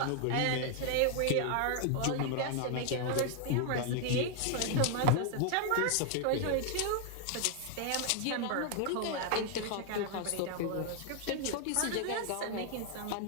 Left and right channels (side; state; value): both; different; correlation 0.00